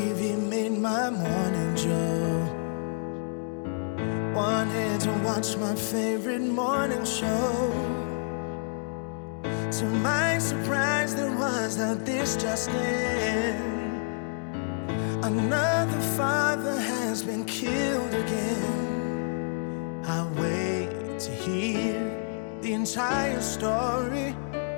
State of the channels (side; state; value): right; silent; digital silence